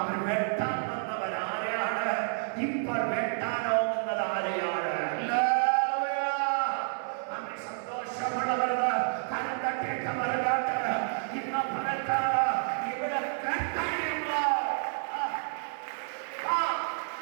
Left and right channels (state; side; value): silent; left; 58 dB below the other